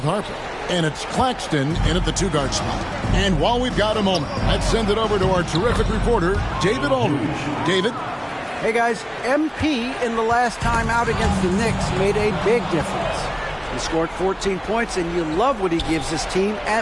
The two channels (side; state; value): both; identical; correlation 1.00